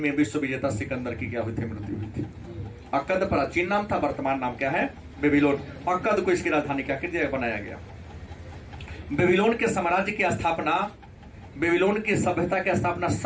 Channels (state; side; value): identical; both; correlation 1.00